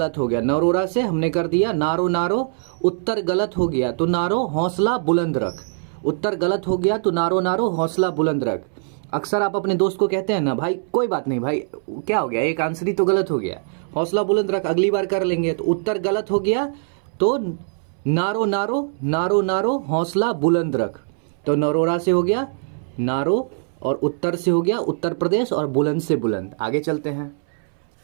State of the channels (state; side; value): silent; left; 64 dB below the other